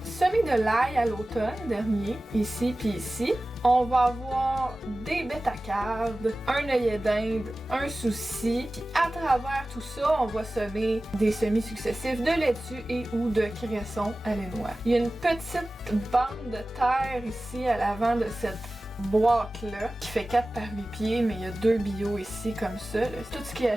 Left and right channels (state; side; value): normal; both; correlation 0.96